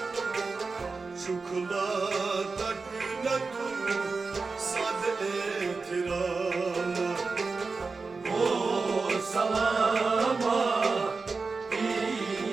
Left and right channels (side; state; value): left; quieter; 4.3 dB